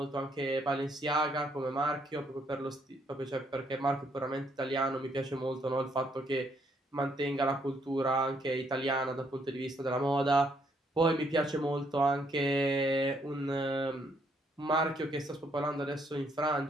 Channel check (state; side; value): normal; both; correlation 0.71